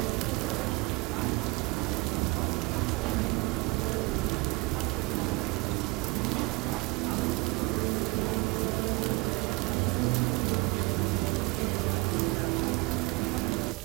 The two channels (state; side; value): quieter; left; 25.1 dB